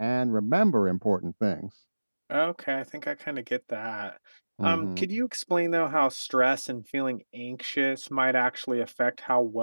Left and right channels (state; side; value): inverted; both; correlation -1.00